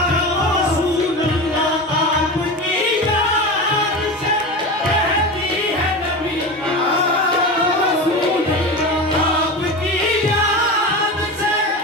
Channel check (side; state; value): both; normal; correlation 0.26